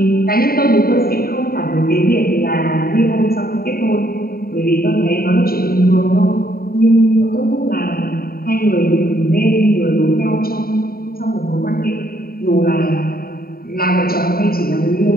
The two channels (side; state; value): right; late; 0.43 ms